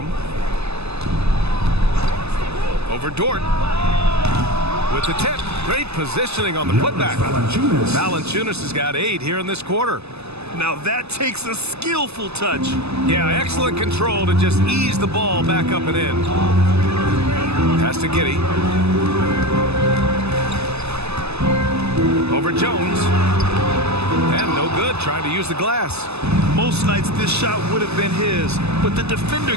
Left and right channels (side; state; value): left; late; 0.79 ms